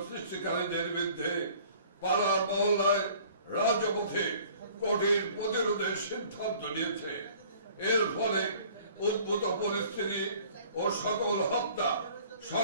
সৃষ্টিকারীদের বিরুদ্ধে পাড়া মহল্লায় রাজপথে কঠিন প্রতিরোধের সিদ্ধান্ত নিয়েছে। এর ফলে উদ্ভূত পরিস্থিতি ও সকল হত্যা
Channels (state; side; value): inverted; both; correlation -0.53